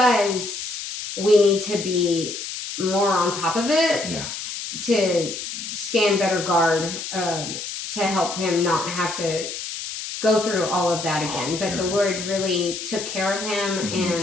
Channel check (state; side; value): noise; left; hiss, 7 dB below the sound